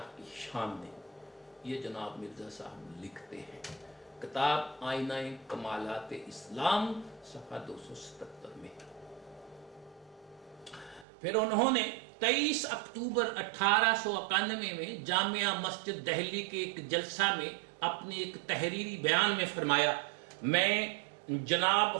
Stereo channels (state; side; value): drops out; left; at 11.1 s